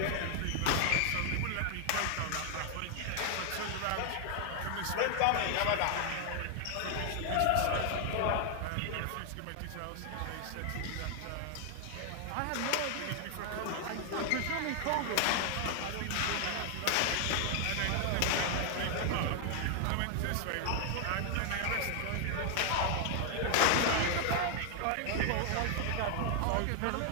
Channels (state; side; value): different; both; correlation 0.00